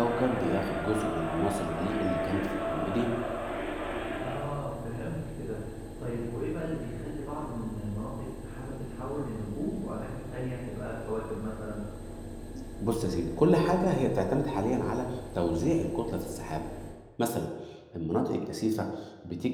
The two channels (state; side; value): identical; both; correlation 1.00